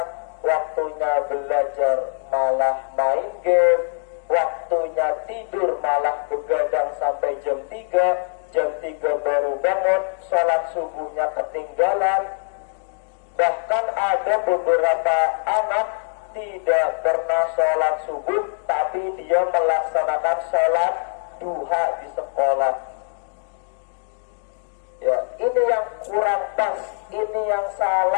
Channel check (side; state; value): right; silent; digital silence